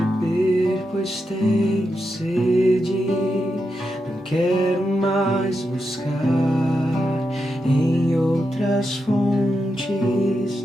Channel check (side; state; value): both; normal; correlation 0.86